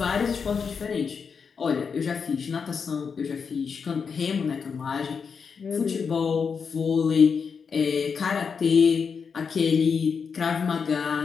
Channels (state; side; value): quieter; right; 5.9 dB